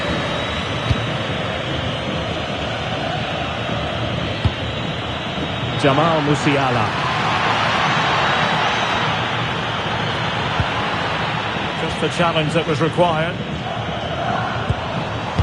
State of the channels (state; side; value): identical; both; correlation 1.00